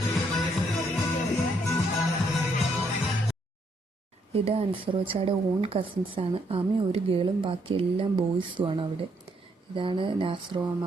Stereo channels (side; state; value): both; normal; correlation 0.72